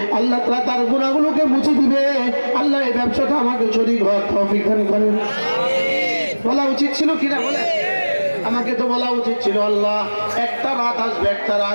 আল্লাহ তাআলা তার গুনাহগুলোকে মুছে দিবে। আল্লাহ এই ব্যবসাটা আমাকে শরীক হওয়ার তৌফিক দান করেন। বলা উচিত ছিল কিনা বলে? আমাকে তো বলা উচিত ছিল আল্লাহ একটা রাত আসবে, একটা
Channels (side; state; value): both; inverted; correlation -1.00